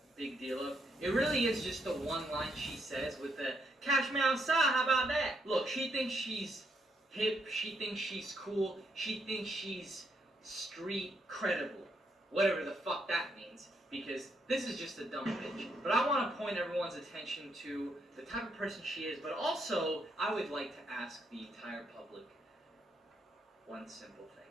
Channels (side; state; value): both; normal; correlation 0.76